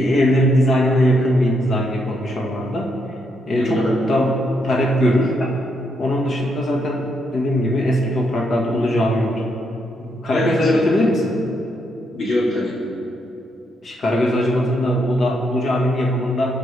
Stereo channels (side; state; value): both; normal; correlation 0.77